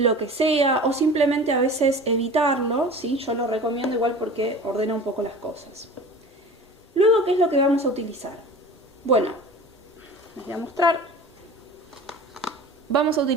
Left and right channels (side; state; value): both; normal; correlation 0.39